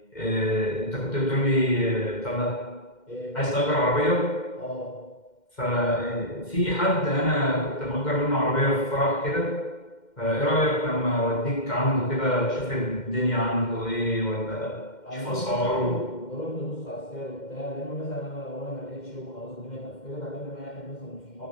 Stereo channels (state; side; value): late; right; 2.1 ms